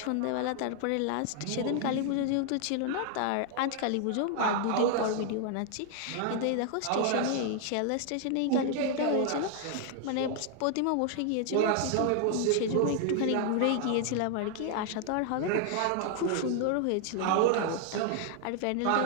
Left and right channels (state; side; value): different; both; correlation 0.00